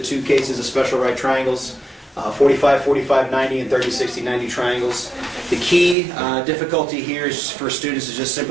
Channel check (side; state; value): left; drops out; at 6.0 s